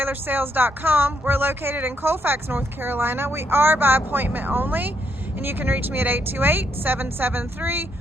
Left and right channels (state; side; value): normal; both; correlation 0.76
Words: We're located in Colfax, North Carolina. We are by appointment only, and you can reach me at